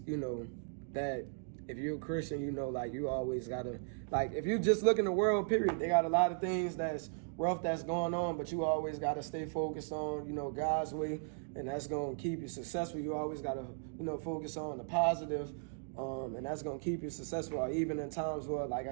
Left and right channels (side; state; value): left; silent; digital silence